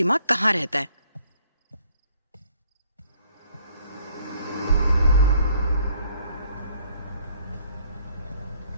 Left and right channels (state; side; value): inverted; both; correlation -0.62